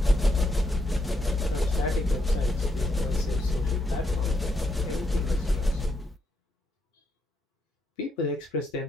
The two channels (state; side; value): normal; both; correlation 0.79